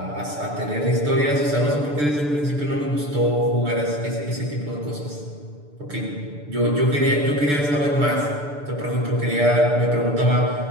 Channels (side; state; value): left; late; 6.8 ms